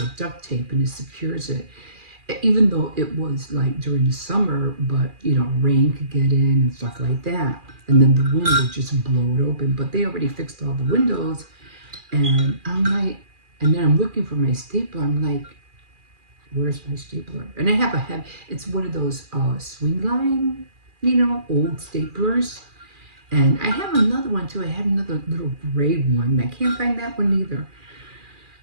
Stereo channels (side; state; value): left; late; 2.4 ms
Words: with duct tape and it secures it. Even though it was like during the summer, but, rain could get in and stuff like that. And then the wind would just blow it open. But they already fixed all the windows. And I'm like, and then I'm looking for my stapler. I'm like, where's my stapler? And I have it's one of those swing line, old staplers. And I have another one too. I have another little gray one. I can't find that one either.